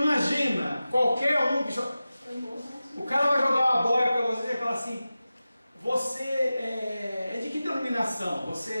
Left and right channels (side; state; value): both; inverted; correlation -0.95